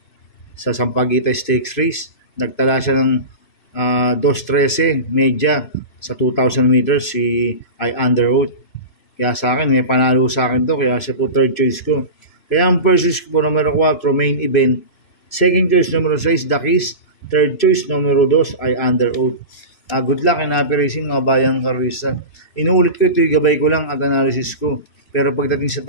sa Sampaguita Stakes Race. Nagtala siya ng 2.13 media sa 2,000 meters si I Under Oath. Kaya sa akin, may panalo sa akin to. Kaya siya po third choice ko. Kaya ang first choice ko po, numero 4, Main Event. Second choice, numero 6, Dakis. Third choice, numero 2, I Under Oath. Good luck in happy racing mga bayang karista. Inuulit ko ito, gabay ko lang at analysis ko. Pero pagdating sa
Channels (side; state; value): right; late; 2.5 ms